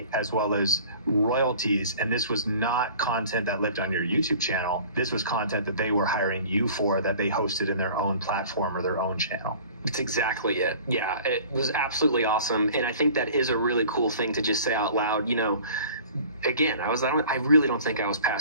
as well as royalties. And this was not content that lived on your YouTube channel. This was content that they were hiring you for, that they hosted in their own platform or their own channel. That's exactly it. Yeah, it was absolutely awesome. And I think that is a really cool thing to just say out loud. You know, again, I really don't think I was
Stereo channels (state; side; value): inverted; both; correlation -0.46